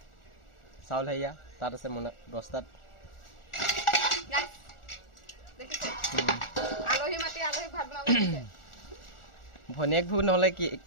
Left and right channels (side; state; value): right; late; 1.4 ms